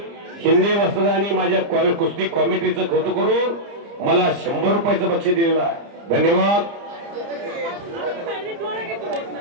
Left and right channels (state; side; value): late; left; 30 ms